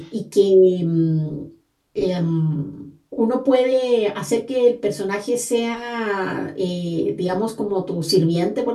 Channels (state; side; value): identical; both; correlation 1.00